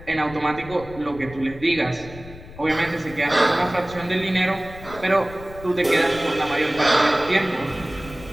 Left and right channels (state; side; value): noise; left; rumble, 17 dB below the sound